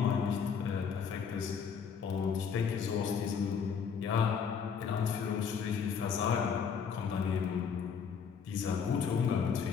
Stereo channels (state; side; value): quieter; right; 6.6 dB